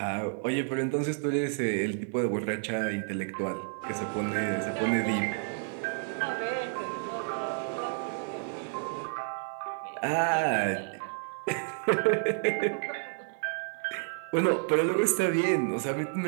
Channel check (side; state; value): left; silent; 58 dB below the other